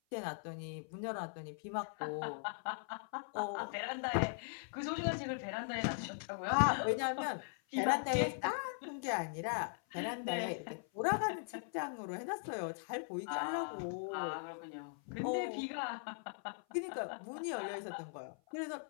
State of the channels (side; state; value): right; silent; 51 dB below the other